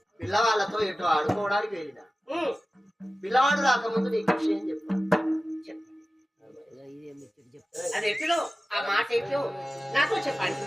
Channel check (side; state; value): both; normal; correlation 0.96